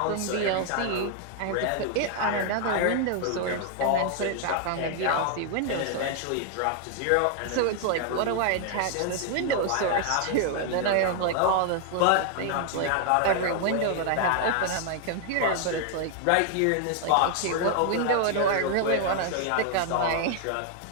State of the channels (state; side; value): different; both; correlation 0.00